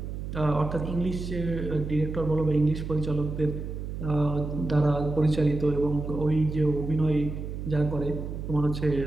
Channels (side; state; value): right; noise; hum, 6 dB below the sound